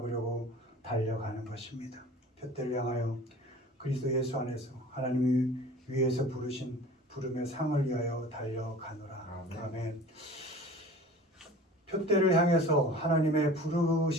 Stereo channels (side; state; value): both; normal; correlation 0.42